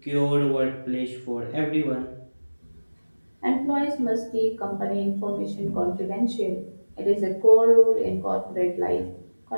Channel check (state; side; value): inverted; both; correlation -1.00